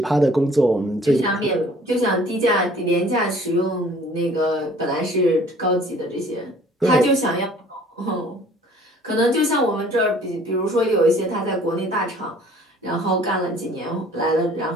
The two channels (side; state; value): both; normal; correlation 0.53